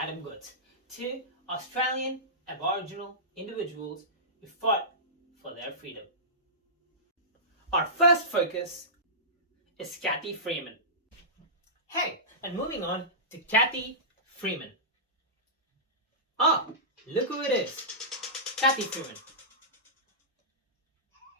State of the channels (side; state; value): both; normal; correlation -0.17